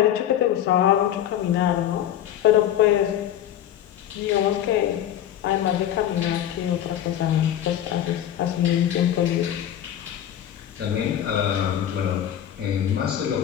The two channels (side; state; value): right; quieter; 11.0 dB